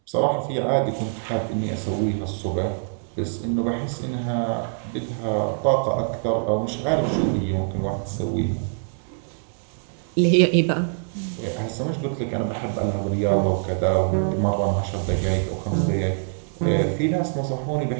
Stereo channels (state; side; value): silent; left; 62 dB below the other